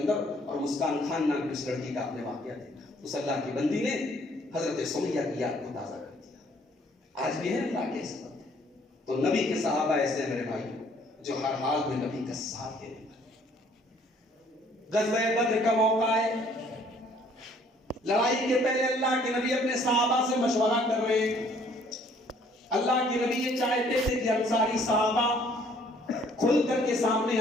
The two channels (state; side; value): normal; both; correlation 0.61